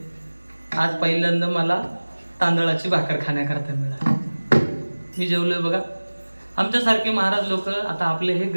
आज पहिल्यांदा मला तांदळाची भाकर खाण्याकरता मिळाली. मी जेवलोय. बघा, आमच्यासारखे महाराज लोक, आता आपले हे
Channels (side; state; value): both; inverted; correlation -1.00